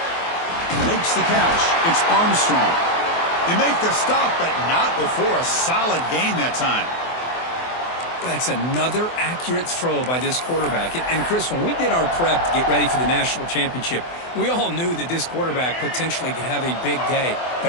Makes the catch. It's Armstrong. They make the stop, but not before a solid gain that time. That's another accurate throw by this quarterback. And Chris, when we did our prep to get ready for the national championship, we all knew that this quarterback potentially could have a big day.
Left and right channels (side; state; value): right; late; 24 ms